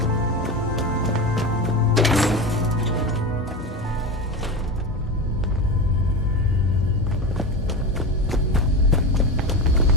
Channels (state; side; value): normal; both; correlation 0.23